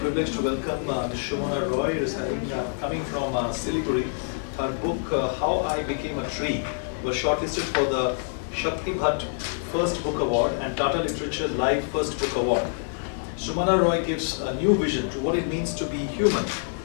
privilege to welcome Ms. Sumana Roy, who is coming from Siliguri. Her book, How I Became a Tree, was shortlisted for the Shakti Bhatt First Book Award and Tata Literature Live First Book Award. Sumana Roy gives a new vision to what it means to be human,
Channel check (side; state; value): right; silent; 61 dB below the other